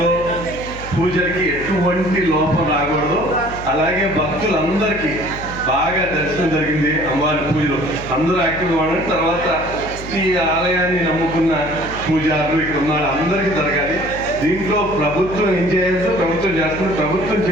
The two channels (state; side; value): noise; left; hum, 13 dB below the sound